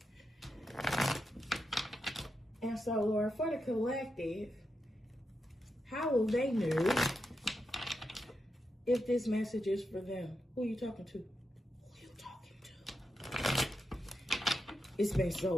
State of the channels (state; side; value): normal; both; correlation 0.86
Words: And so, Lord, for the collective, how will they know if this message is for them? Who are you talking to? It's been